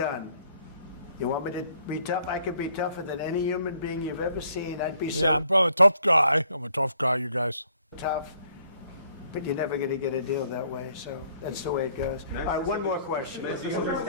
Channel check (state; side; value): inverted; both; correlation -0.64